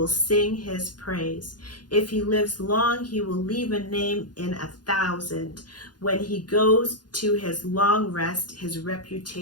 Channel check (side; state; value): right; late; 0.70 ms